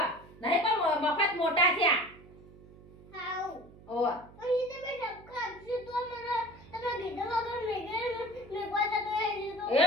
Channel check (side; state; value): right; noise; hum, 21 dB below the sound